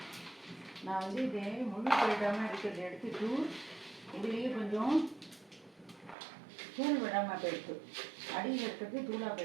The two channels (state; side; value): drops out; left; at 6.2 s